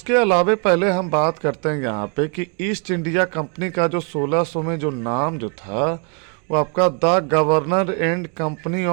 अलावे पहले हम बात करते हैं यहाँ पे कि ईस्ट इंडिया कंपनी का जो 1600 में जो नाम जो था वो आपका the governor and company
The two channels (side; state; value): left; quieter; 36.3 dB